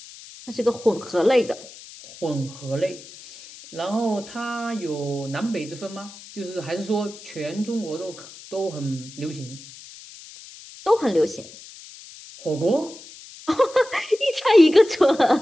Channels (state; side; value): noise; left; hiss, 18 dB below the sound